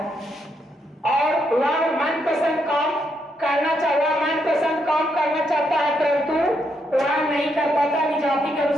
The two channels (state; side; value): normal; both; correlation 0.78